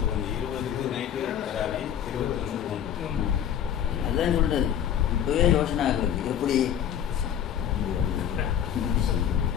அதுதான் சொல்றது. இப்போவே யோசனை ஆகுறது எப்படி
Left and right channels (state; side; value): quieter; right; 9.5 dB